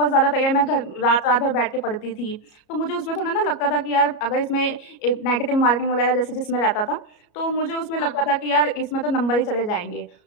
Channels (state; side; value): late; right; 33 ms